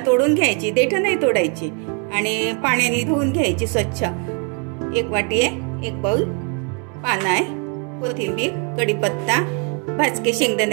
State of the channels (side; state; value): left; quieter; 35.9 dB